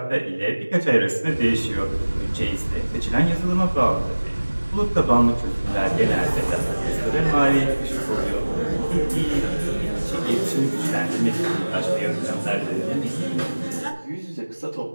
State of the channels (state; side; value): inverted; both; correlation -1.00